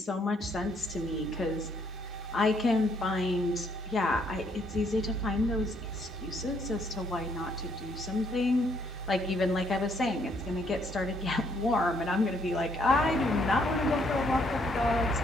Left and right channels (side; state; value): both; normal; correlation 0.69